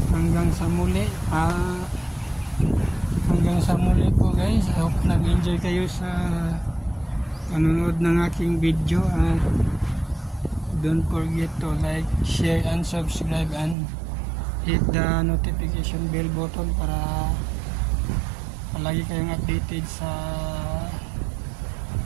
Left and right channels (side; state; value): left; drops out; at 13.8 s